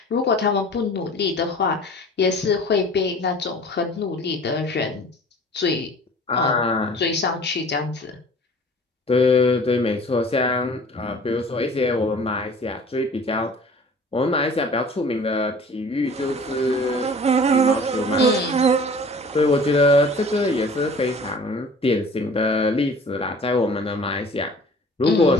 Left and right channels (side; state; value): both; normal; correlation 0.46